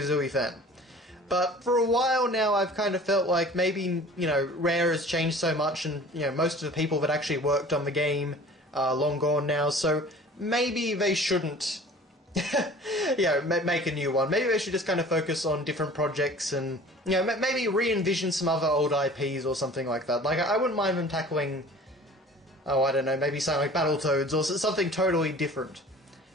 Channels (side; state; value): both; normal; correlation 0.45